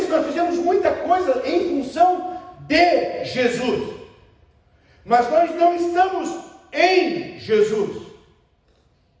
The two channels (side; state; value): both; identical; correlation 1.00